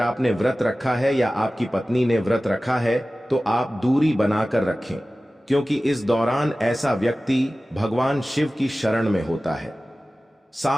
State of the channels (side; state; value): both; normal; correlation 0.96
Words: व्रत रखा है या आपकी पत्नी ने व्रत रखा है तो आप दूरी बनाकर रखें, क्योंकि इस दौरान ऐसा व्यक्ति भगवान शिव की शरण में होता है।